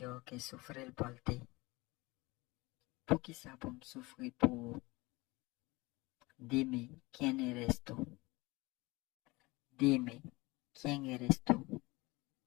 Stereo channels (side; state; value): right; quieter; 22.8 dB